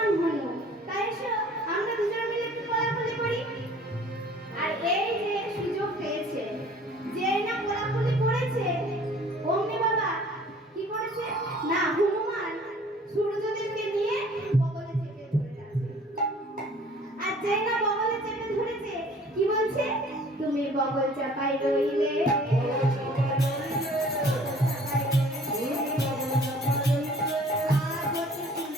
তুমি বগল চাপাই রইলে।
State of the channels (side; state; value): both; normal; correlation 0.52